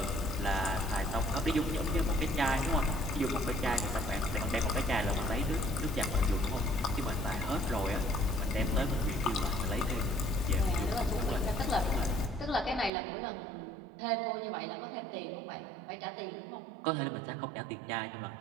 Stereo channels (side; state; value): left; drops out; at 12.9 s